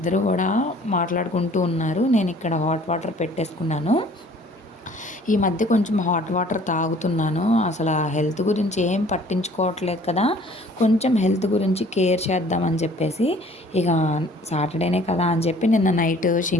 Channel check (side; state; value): both; normal; correlation 0.54